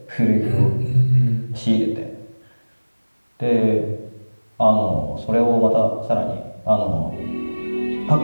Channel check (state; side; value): inverted; both; correlation -1.00